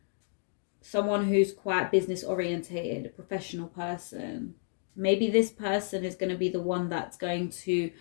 Someone who's quite business orientated, a professional person. Maybe this person is going to be the one that's going to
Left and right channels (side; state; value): right; silent; digital silence